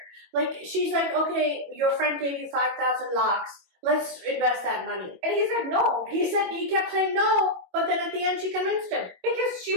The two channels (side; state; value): left; late; 22 ms